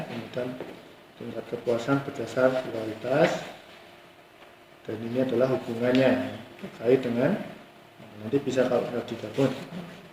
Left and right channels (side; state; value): both; identical; correlation 1.00